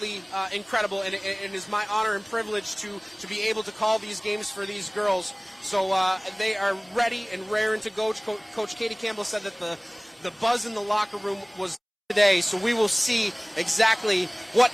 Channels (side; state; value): both; identical; correlation 1.00